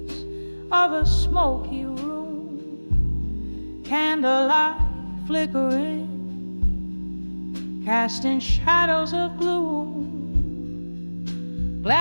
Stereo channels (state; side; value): inverted; both; correlation -1.00